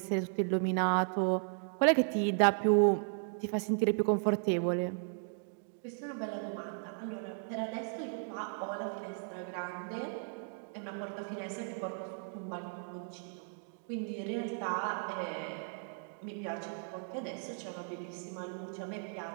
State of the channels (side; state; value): left; silent; 54 dB below the other